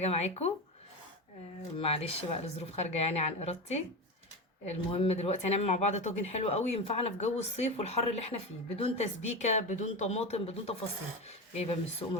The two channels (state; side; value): normal; both; correlation 0.21